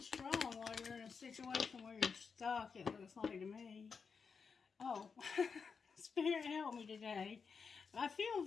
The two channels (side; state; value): right; quieter; 5.6 dB